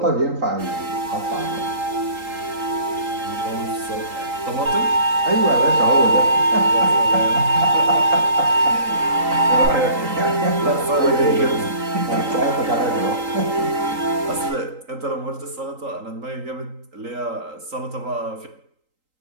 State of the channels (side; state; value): left; late; 3.8 ms